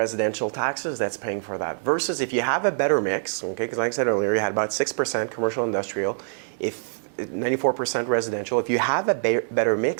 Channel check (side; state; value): left; silent; 60 dB below the other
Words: taxes that's paying for that. Versus if you have a better mix, okay, because like I said earlier, you had about 6% commercial industrial, if 94% residential. If you have a better